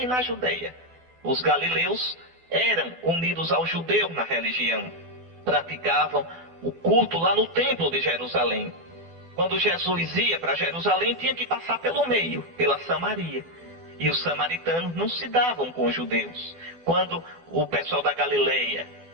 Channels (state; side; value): late; left; 12 ms